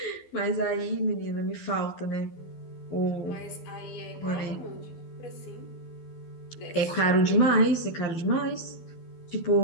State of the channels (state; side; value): late; right; 12 ms